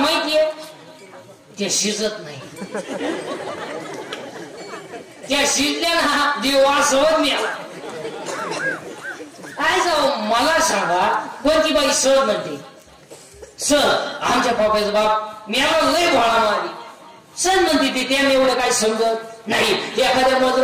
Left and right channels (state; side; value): identical; both; correlation 1.00